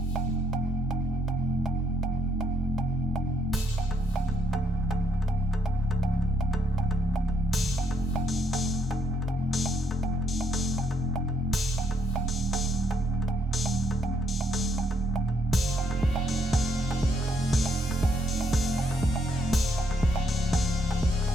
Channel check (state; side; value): normal; both; correlation 0.73